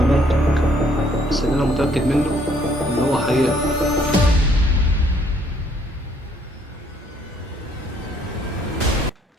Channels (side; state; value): both; normal; correlation 0.65